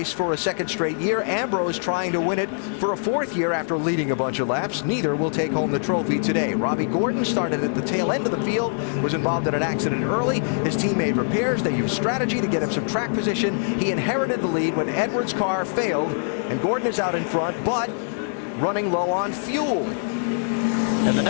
for a 2nd straight year. Ambrose trying to win it for a 4th year after leading a bunch of laps. Neither will take home the trophy today. Robbie Gordon started at the tail end of the field, was involved in an accident early. His team made repairs. They used strategy to get him some track position. He inherited the lead when Edwards' car failed, and Gordon is out in front, but running low on fuel. And the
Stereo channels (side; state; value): right; silent; digital silence